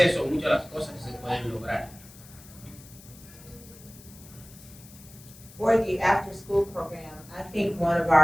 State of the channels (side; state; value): left; noise; hiss, 20 dB below the sound